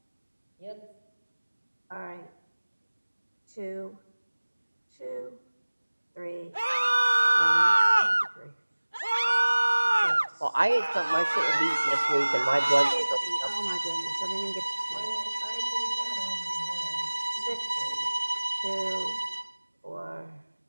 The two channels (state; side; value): inverted; both; correlation -1.00